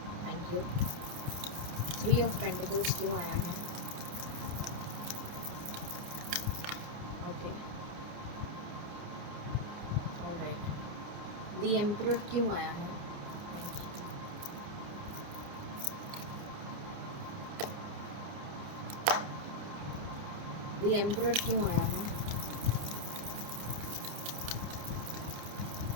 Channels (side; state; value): left; late; 29 ms